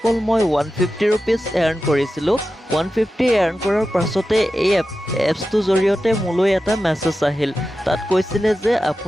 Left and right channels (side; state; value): both; normal; correlation 0.92